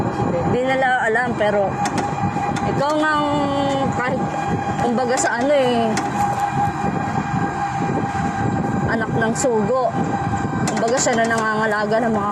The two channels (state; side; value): identical; both; correlation 1.00